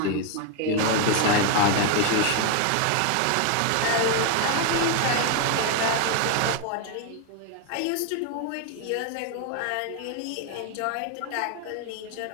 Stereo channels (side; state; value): both; different; correlation 0.01